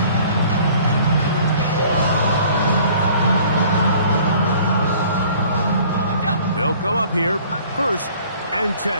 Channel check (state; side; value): inverted; both; correlation -0.53